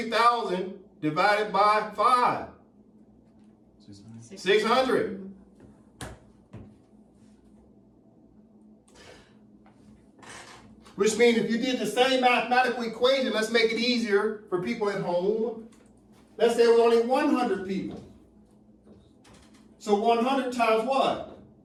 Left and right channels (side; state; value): both; identical; correlation 1.00